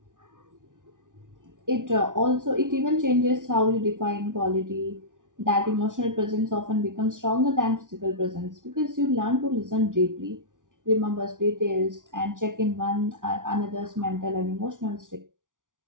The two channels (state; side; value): late; left; 0.88 ms